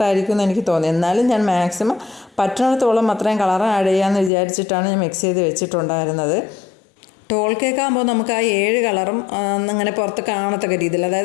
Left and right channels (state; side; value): drops out; right; at 4.3 s